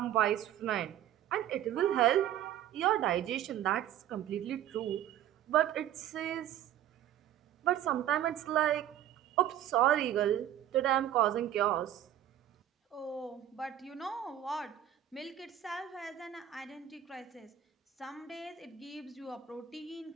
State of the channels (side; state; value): left; quieter; 11.3 dB